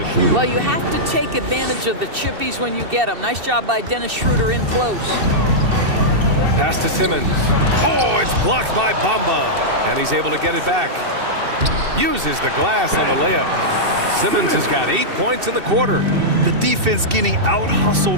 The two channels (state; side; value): late; left; 2.7 ms